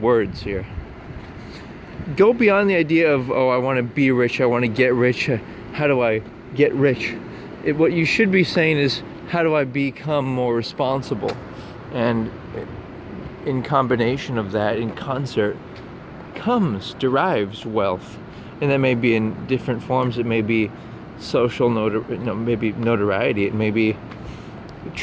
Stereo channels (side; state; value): both; identical; correlation 1.00